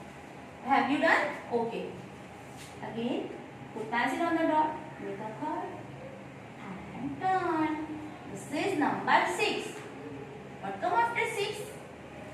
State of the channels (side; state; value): both; identical; correlation 1.00